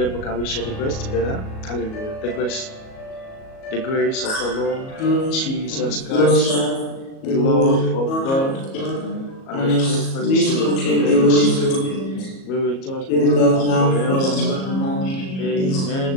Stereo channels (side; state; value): right; late; 37 ms